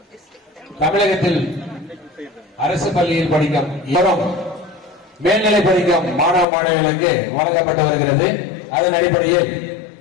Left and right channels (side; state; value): right; drops out; at 6.5 s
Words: தமிழகத்தில் அரசு பள்ளியில் படிக்கும் மேல்நிலை படிக்கும் மாணவ மாணவிகளுக்கு வழங்கப்பட்டு வருகிறது. அதன் அடிப்படையில்